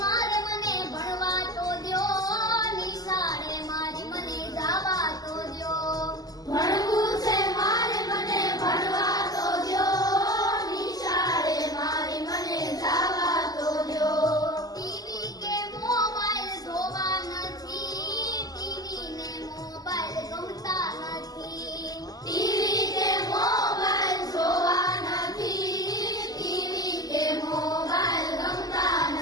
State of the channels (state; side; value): late; right; 0.18 ms